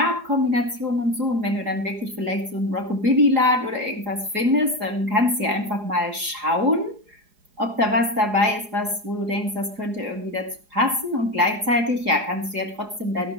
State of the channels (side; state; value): left; late; 4.8 ms